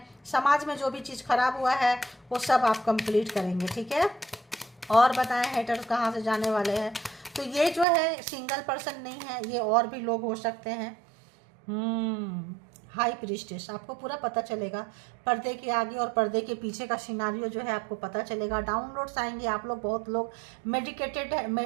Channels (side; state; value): left; drops out; at 7.9 s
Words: समाज में जो भी चीज़ खराब हुआ है वो सब आप कंप्लीट करेंगे, ठीक है। और बताएं हेटर्स कहाँ से जाने वाले हैं। तो ये जो है सिंगल पर्सन नहीं है, ये और भी लोग हो सकते हैं। हाई प्रीस्टेस, आपको पूरा पता चलेगा, पर्दे के आगे और पर्दे के पीछे का सिनारियो जो है आपको पता चलेगा। डाउनलोड्स आएंगे, आप लोग, बहुत लोग मेडिकेटेड है,